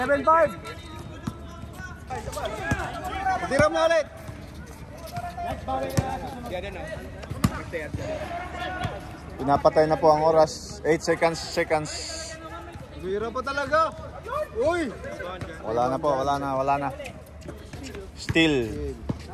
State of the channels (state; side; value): identical; both; correlation 1.00